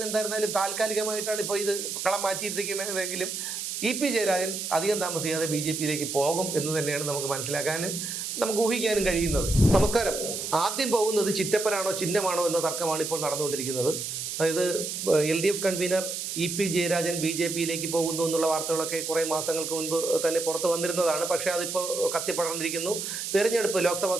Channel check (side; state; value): right; noise; hiss, 4 dB below the sound